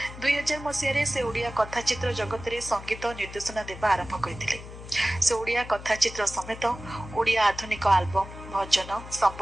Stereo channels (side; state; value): left; noise; hum, 13 dB below the sound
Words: 2000 मसीह से ओडिया कथाचित्र जगत में संगीत निर्देशना देवा आरंभ करते। से ओडिया कथाचित्र समेत ओडिया आधुनिक आल्बम भजन